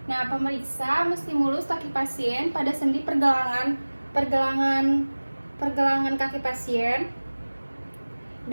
Nah, pemeriksa menstimulus kaki pasien pada sendi pergelangan kaki pasien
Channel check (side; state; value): both; inverted; correlation -1.00